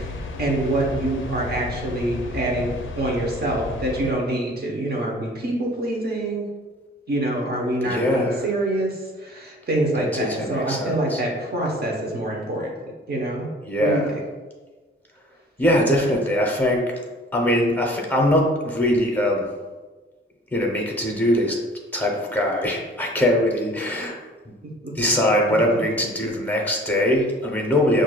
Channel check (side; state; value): both; normal; correlation 0.49